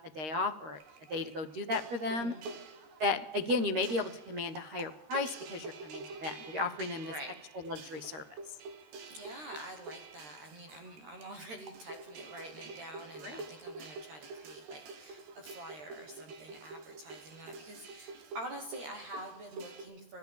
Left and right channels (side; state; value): left; late; 13 ms